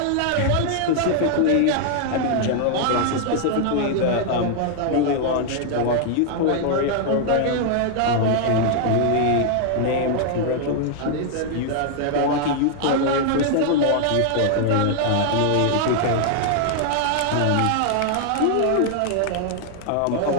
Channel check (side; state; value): both; different; correlation 0.00